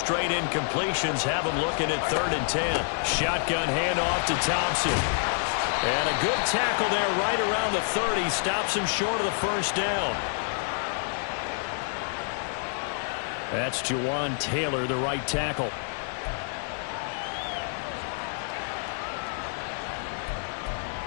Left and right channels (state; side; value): silent; right; digital silence